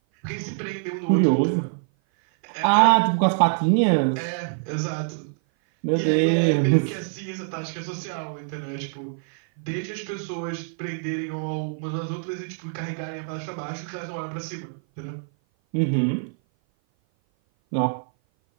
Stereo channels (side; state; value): left; silent; 56 dB below the other